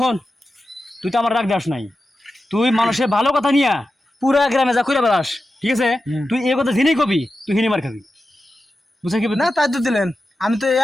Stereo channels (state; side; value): normal; both; correlation 0.92